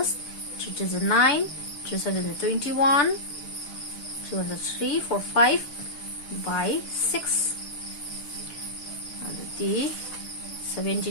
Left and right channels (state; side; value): late; right; 6.9 ms